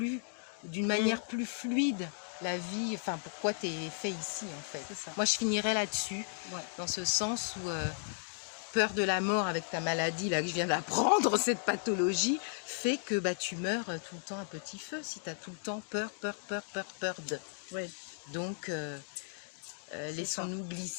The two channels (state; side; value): silent; right; digital silence